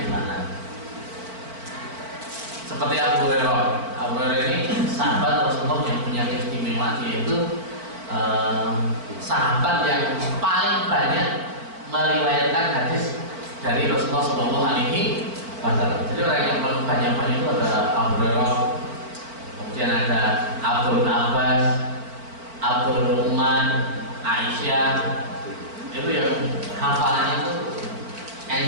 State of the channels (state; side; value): late; left; 4.5 ms